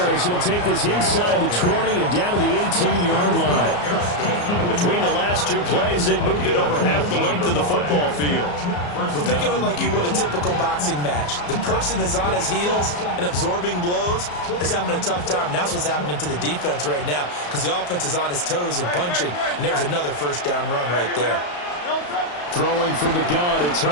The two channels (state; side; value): late; right; 34 ms